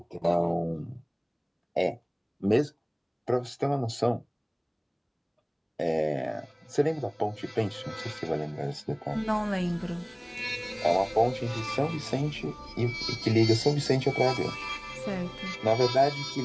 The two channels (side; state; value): both; identical; correlation 1.00